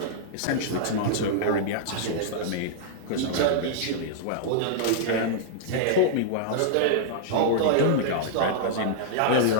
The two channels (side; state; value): both; different; correlation -0.02